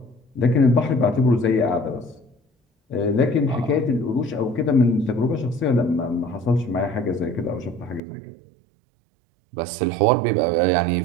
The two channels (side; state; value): left; drops out; at 8.0 s